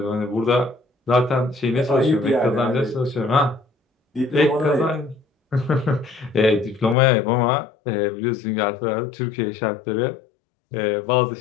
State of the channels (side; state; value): right; drops out; at 7.0 s